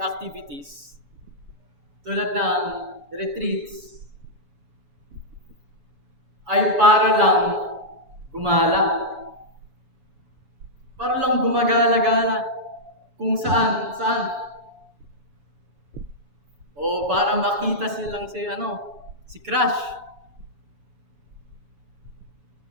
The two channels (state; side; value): late; left; 7.0 ms